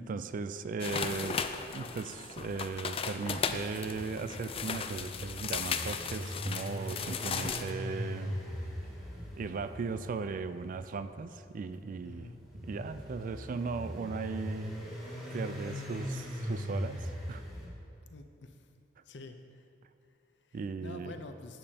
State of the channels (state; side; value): normal; both; correlation 0.43